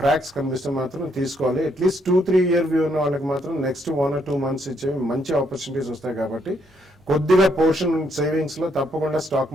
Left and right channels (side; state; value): both; normal; correlation 0.73